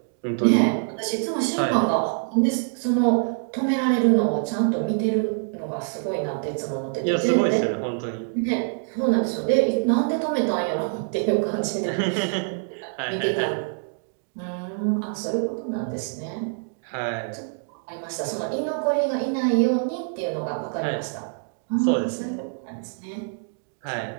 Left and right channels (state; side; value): silent; left; digital silence